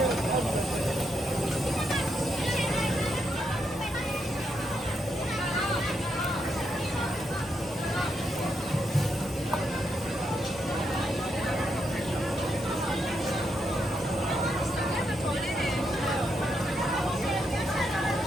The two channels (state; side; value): normal; both; correlation 0.81